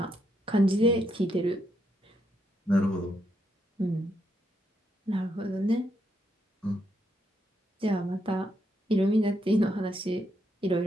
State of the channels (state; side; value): normal; both; correlation 0.78